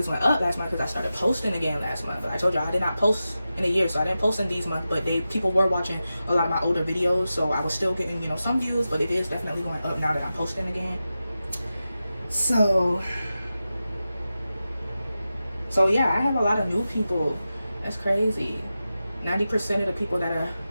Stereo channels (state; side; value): inverted; both; correlation -0.92